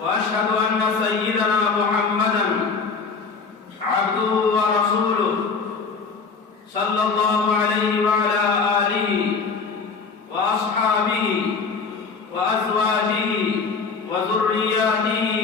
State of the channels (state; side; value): quieter; right; 4.9 dB